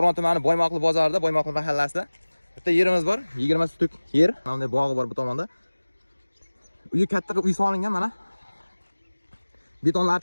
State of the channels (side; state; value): both; inverted; correlation -1.00